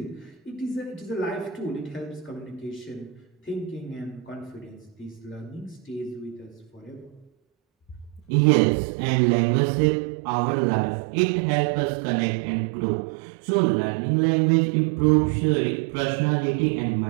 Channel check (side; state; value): left; drops out; at 8.2 s